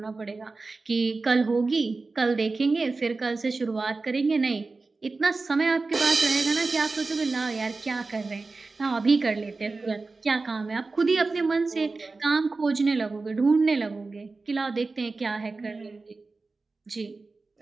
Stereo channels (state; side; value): quieter; left; 3.8 dB